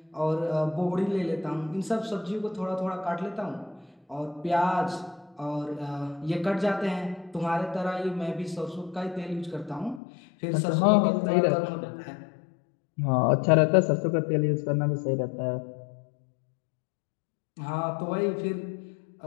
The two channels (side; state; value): right; drops out; at 10.0 s